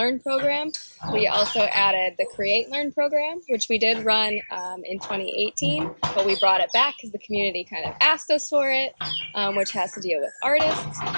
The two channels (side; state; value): both; inverted; correlation -1.00